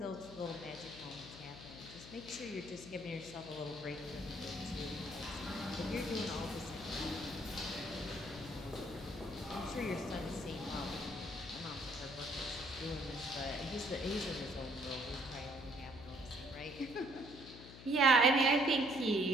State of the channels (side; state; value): left; noise; hum, 15 dB below the sound